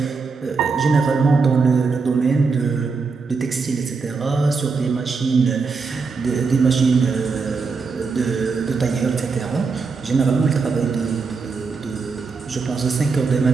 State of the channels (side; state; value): left; quieter; 4.7 dB